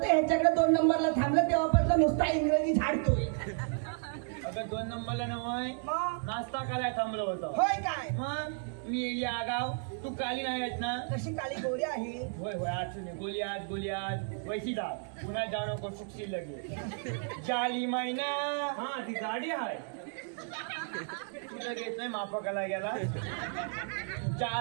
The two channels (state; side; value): silent; left; 56 dB below the other